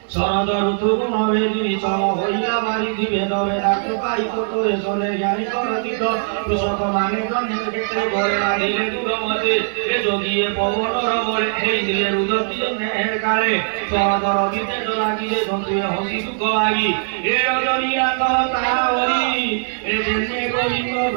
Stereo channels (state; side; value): silent; left; digital silence